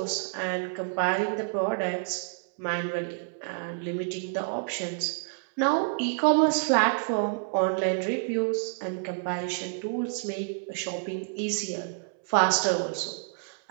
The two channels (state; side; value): silent; left; 59 dB below the other